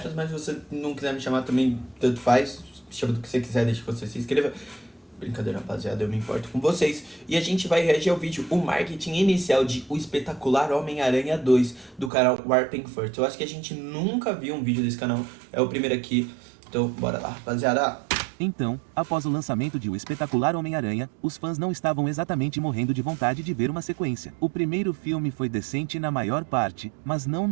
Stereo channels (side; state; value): left; drops out; at 12.1 s